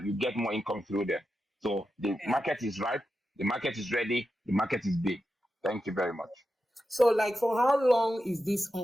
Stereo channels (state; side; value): normal; both; correlation 0.89